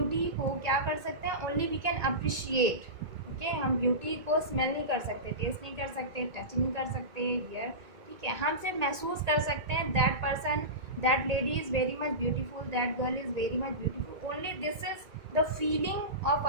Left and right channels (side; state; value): left; late; 1.9 ms